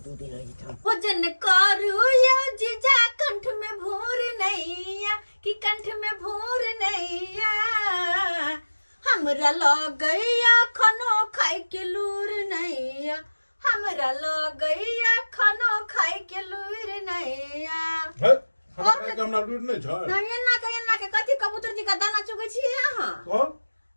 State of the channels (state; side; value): inverted; both; correlation -1.00